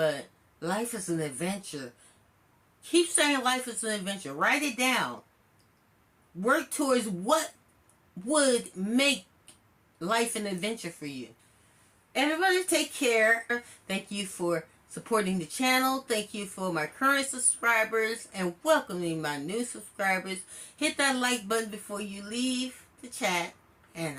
life is an adventure. Keep saying life is an adventure. Write it down. Work towards what would make life an adventure for you. Everybody take care. Thank you for supporting the channel. Thank you for my current subscribers and welcoming my new subscribers. Hit that like button before you leave the chat,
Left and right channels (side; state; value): both; identical; correlation 1.00